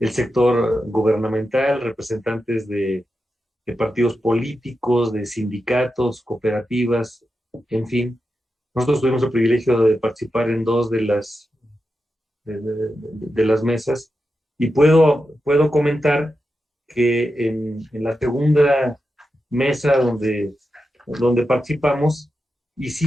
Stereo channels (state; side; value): normal; both; correlation 0.89